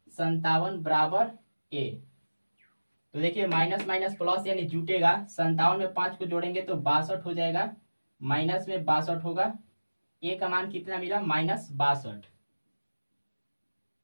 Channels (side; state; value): both; inverted; correlation -1.00